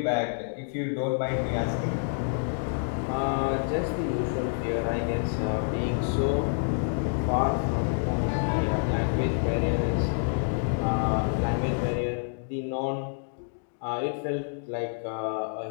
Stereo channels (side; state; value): right; silent; digital silence